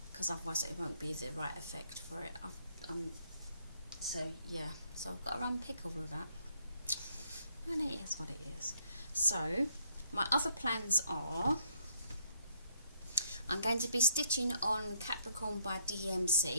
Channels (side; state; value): both; inverted; correlation -0.71